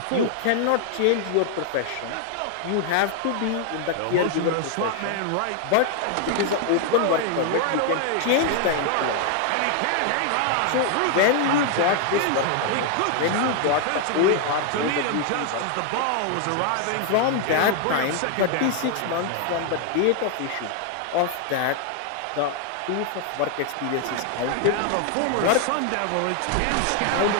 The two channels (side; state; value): both; different; correlation 0.00